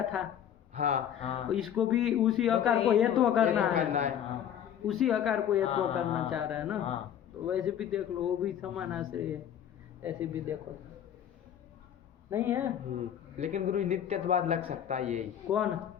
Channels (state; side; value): quieter; right; 9.7 dB